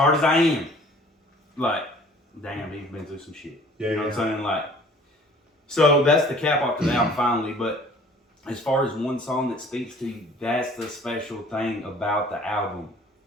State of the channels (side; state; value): both; normal; correlation 0.52